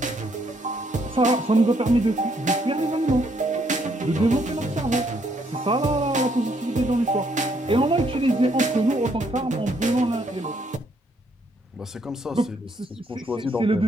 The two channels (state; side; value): normal; both; correlation 0.71